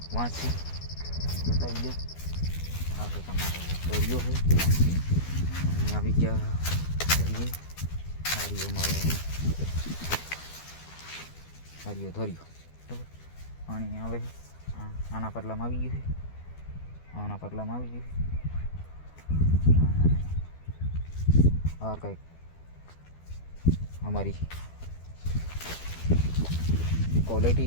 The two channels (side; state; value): right; late; 12 ms